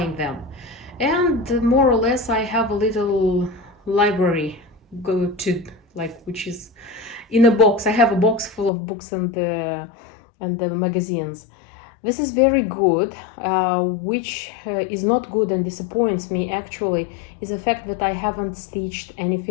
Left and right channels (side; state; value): right; drops out; at 8.7 s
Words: them. And more or less I have a little library which is in a box. I have a box full of books and the magazines. This is very good. Which is not good and disappoints me actually is the fact that I haven't stitched